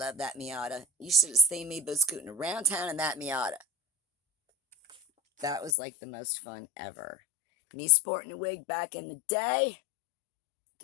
that Miata. You should have seen me scooting around town in that Miata. That was like the most fun ever. Me sporting a wig back in the day.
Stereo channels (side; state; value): right; drops out; at 5.7 s